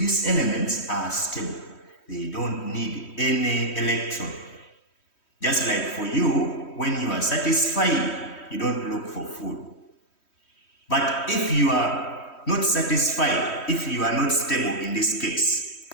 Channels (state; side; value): late; right; 3.1 ms